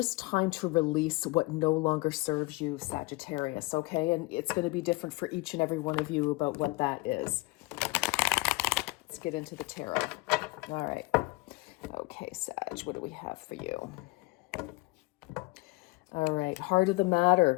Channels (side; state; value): right; quieter; 22.7 dB